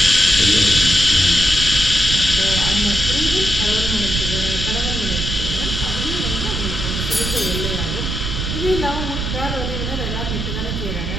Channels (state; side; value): noise; right; rumble, 3 dB below the sound